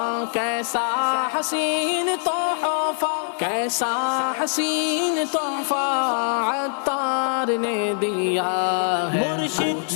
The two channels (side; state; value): right; silent; 63 dB below the other